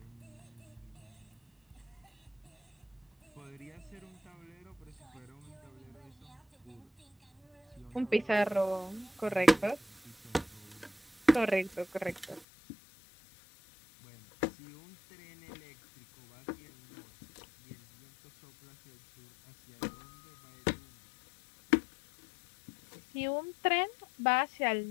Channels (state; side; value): drops out; right; at 12.5 s